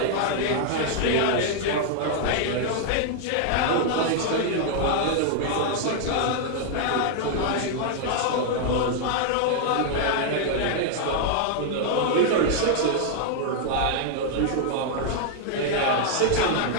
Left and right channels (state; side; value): different; both; correlation 0.00